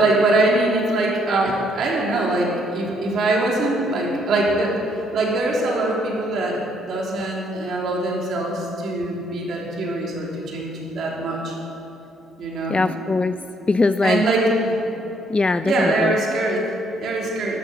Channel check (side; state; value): both; normal; correlation 0.69